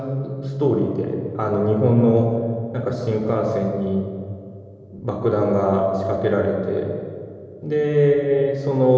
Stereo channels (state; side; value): identical; both; correlation 1.00